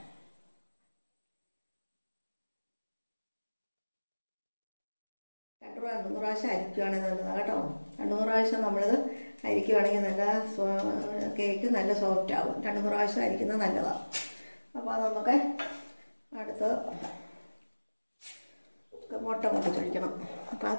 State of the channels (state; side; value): inverted; both; correlation -1.00